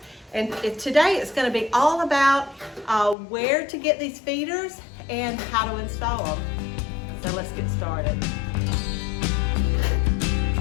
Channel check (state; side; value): drops out; right; at 3.2 s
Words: And today it's going to be all about where to get these feeders and how to install them. So let's get started.